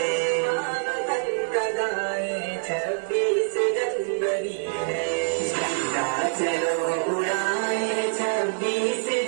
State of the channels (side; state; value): left; silent; digital silence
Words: वतन का गाए। 26 जनवरी है, झंडा चलो उड़ाए। 26